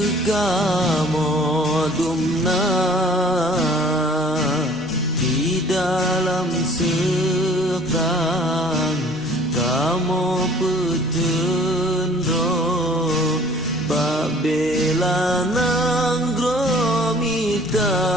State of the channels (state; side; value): normal; both; correlation 0.52